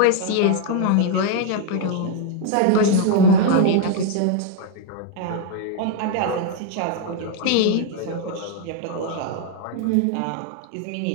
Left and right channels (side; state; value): both; different; correlation 0.00